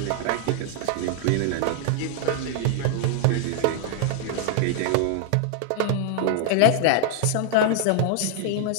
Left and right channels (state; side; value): different; both; correlation -0.01